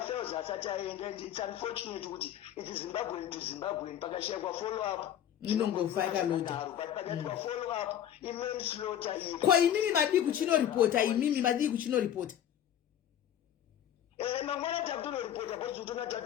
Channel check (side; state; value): right; quieter; 10.4 dB